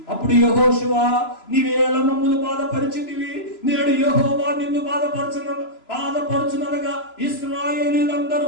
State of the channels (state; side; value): late; right; 3.0 ms